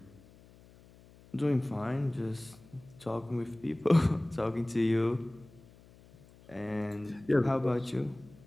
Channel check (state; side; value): noise; left; hum, 24 dB below the sound